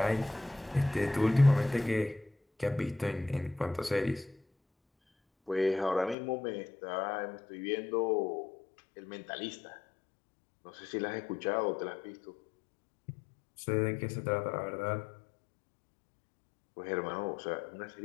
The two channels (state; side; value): drops out; right; at 6.2 s